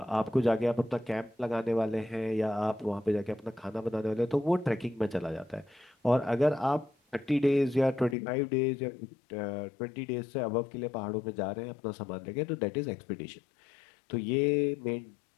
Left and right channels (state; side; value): drops out; right; at 8.2 s